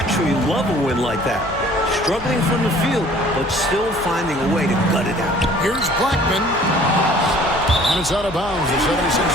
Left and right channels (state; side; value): noise; left; hum, 14 dB below the sound